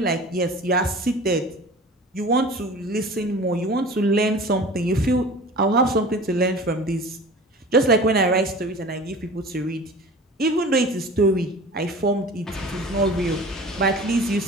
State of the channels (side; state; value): both; normal; correlation 0.40